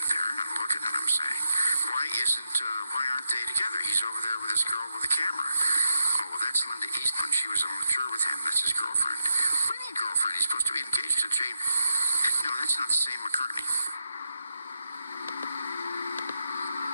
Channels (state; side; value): inverted; both; correlation -0.84